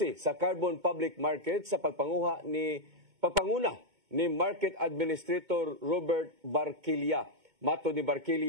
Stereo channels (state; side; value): late; left; 2.2 ms